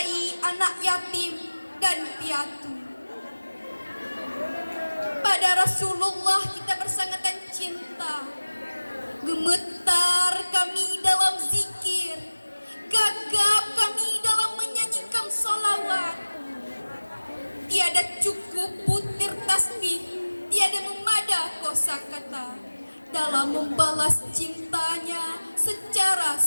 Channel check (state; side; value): inverted; both; correlation -1.00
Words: anak yatim dan piatu. Pada Rasulullah kita bersangatan cinta. Gemetar kami dalam zikir, gagap kami dalam menyanyikan sholawat. Tiada cukup butir tasbih, tiada memada kosakata dalam membalas cintanya secara